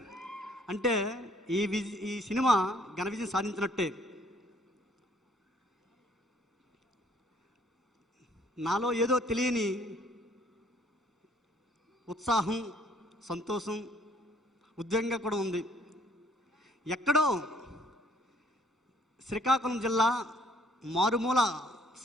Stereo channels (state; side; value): normal; both; correlation 0.62